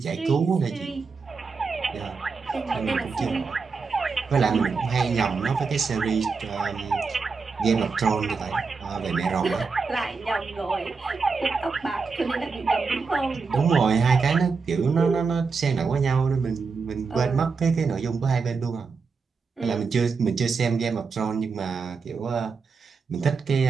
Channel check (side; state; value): left; quieter; 4.9 dB